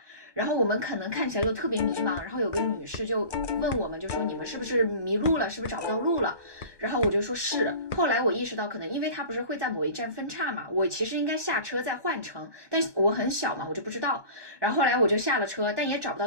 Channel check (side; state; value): left; late; 1.2 ms